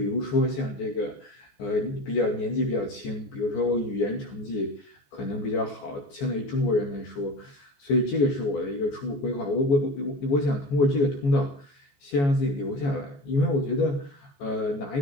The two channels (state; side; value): late; right; 14 ms